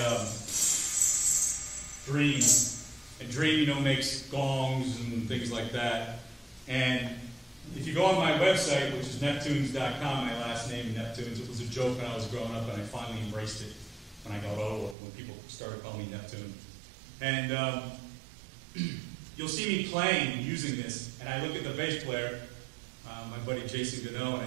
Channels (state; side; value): drops out; left; at 15.0 s